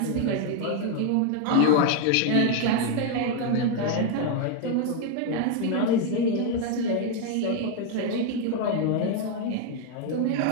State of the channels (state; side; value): different; both; correlation 0.01